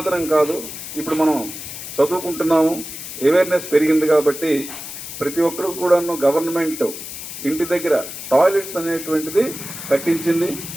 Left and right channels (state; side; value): noise; left; hiss, 10 dB below the sound